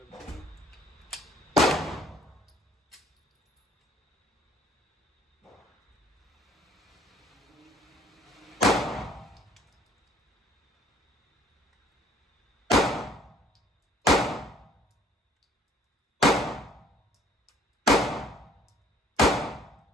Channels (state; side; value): normal; both; correlation 0.57